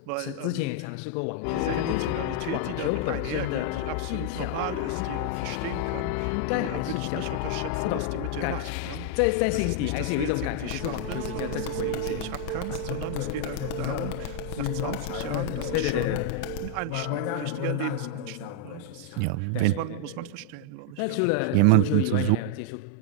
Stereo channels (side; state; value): both; different; correlation 0.00